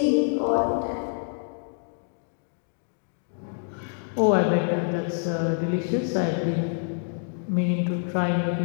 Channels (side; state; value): right; silent; 60 dB below the other